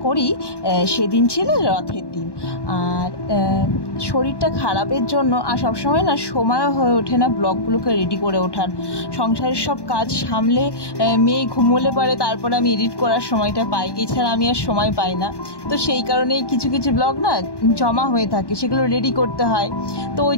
করি সেদিন ছিল রথের দিন। আর শরীরটা খারাপের জন্য আর সবসময় না সময় হয়ে ওঠে না ব্লগগুলোকে রেডি করে ওঠার। সংসারের সব কাজ সামলে মেয়ে ঘুমোলে পারে তারপরে আমি এডিট করার সময়টা পাই, এছাড়া আমি আর সময় পাই না। তো সেই কারণেই কিছু কিছু ব্লগ না জমা হয়ে থাকে, সেগুলো রেডি করতে হয়। তো ওই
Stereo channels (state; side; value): late; right; 1.1 ms